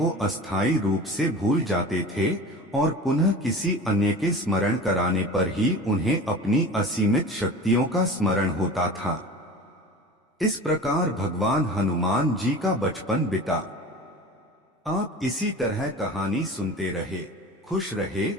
अस्थायी रूप से भूल जाते थे और पुनः किसी अन्य के स्मरण कराने पर ही उन्हें अपनी असीमित शक्तियों का स्मरण होता था। इस प्रकार भगवान हनुमान जी का बचपन बीता। आप इसी तरह कहानी सुनते रहे, खुश रहे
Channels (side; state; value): both; normal; correlation 0.36